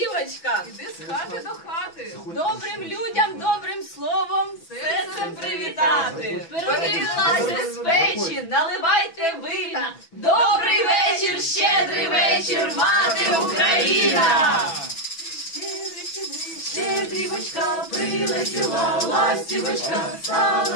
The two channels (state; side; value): late; right; 6.0 ms